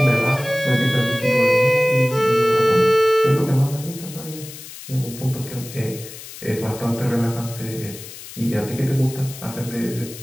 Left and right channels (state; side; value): noise; left; hiss, 14 dB below the sound